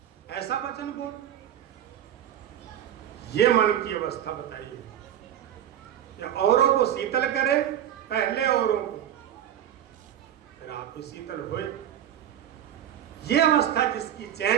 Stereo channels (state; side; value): quieter; left; 10.7 dB